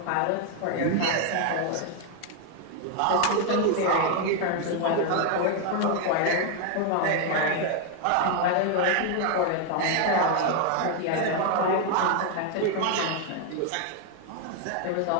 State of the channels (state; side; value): different; both; correlation 0.01